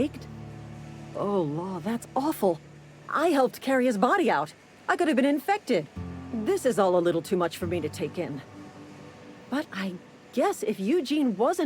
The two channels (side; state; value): both; identical; correlation 1.00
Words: Oh, Law, that's awful. I helped carry his body out. I could have been infected. This is all a little too much for me to take in. But I guess if Eugene